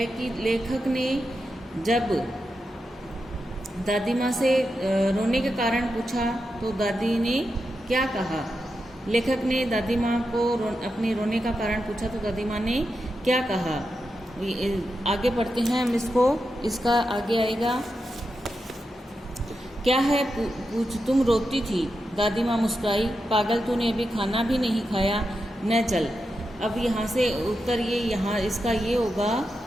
कि लेखक ने जब दादी माँ से रोने के कारण पूछा तो दादी ने क्या कहा। लेखक ने दादी माँ को अपने रोने का कारण पूछा तो दादी माँ ने क्या कहा। आगे पढ़ते हैं हम इसका आगे आएगा। क्या है पूछ, तुम रोती थी? दादी माँ मुस्कुराई। पागल, तूने अभी खाना भी नहीं खाया, न चल। अब यहाँ से उत्तर इसका ये होगा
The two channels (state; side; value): normal; both; correlation 0.88